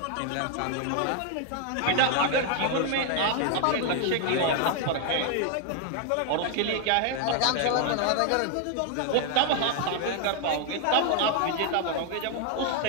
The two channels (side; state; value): both; different; correlation 0.00